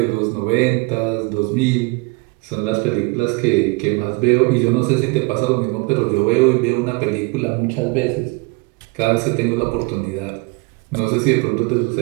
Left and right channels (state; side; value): quieter; left; 26.9 dB